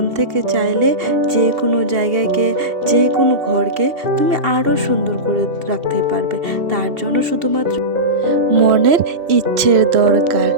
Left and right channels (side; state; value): left; late; 2.6 ms